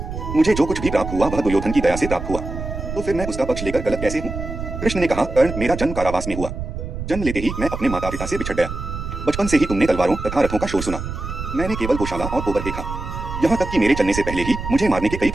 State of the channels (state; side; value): noise; right; rumble, 7 dB below the sound